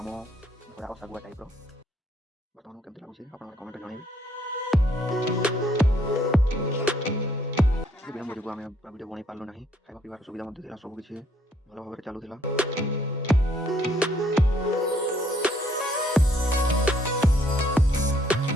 आम थोड़ा सागुआ टाइप बर्तमान केमती लगुच आप कमेंट जनइबे। विलम्ब जो आम वीडियो बन पार्लु ना खावा पीवार सुविधा सबकि भल भाव चलूला।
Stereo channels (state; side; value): normal; both; correlation 0.66